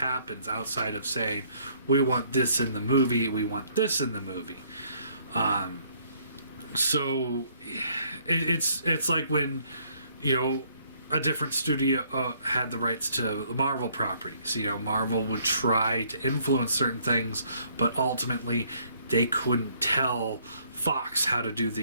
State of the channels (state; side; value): inverted; both; correlation -0.65